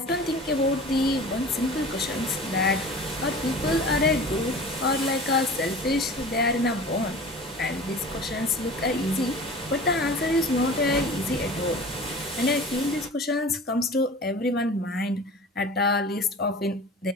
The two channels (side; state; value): both; normal; correlation 0.39